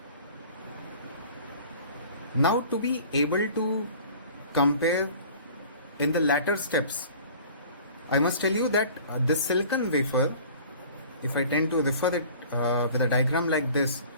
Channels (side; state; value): both; inverted; correlation -0.46